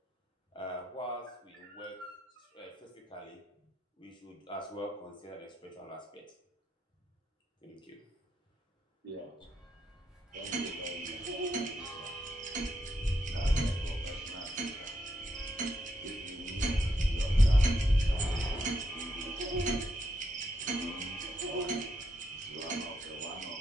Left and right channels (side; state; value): both; normal; correlation 0.80